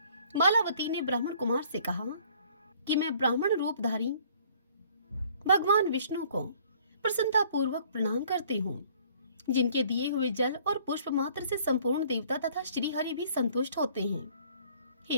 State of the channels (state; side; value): inverted; both; correlation -0.57